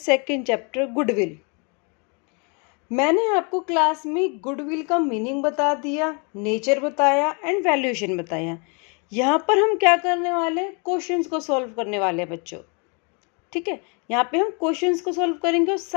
चैप्टर, गुडविल। मैंने आपको क्लास में गुडविल का मीनिंग बता दिया, नेचर बताया एंड वैल्यूएशन बताया। यहाँ पर हम क्या करने वाले हैं, क्वेश्चंस को सॉल्व करने वाले हैं बच्चों। ठीक है, यहाँ पे हम क्वेश्चंस को सॉल्व करेंगे और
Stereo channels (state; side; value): quieter; right; 34.6 dB